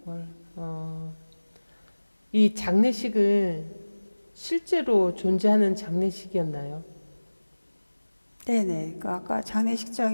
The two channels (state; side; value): inverted; both; correlation -1.00